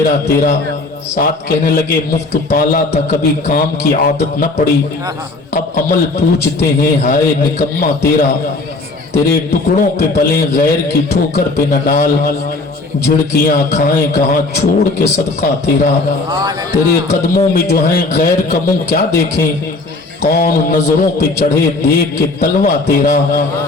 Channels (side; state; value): right; quieter; 3.3 dB